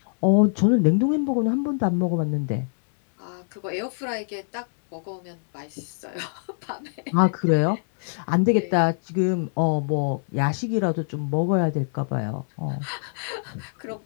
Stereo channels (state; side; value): silent; right; digital silence